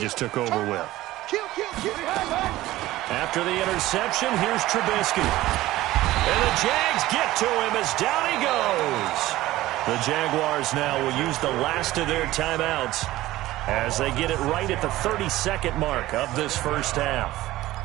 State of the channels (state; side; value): quieter; left; 16.4 dB